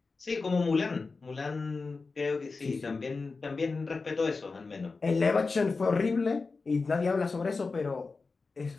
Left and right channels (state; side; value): quieter; right; 4.2 dB